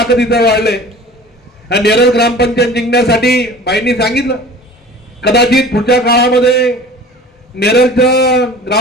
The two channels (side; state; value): both; normal; correlation 0.42